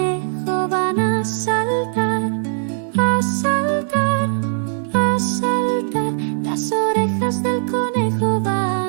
van a saltar, a saltar, a saltar. Las orejas del conejo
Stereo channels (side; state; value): left; silent; 65 dB below the other